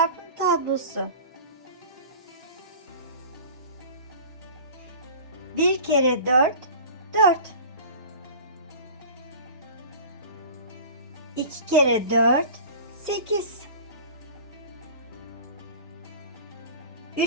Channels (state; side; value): inverted; both; correlation -0.38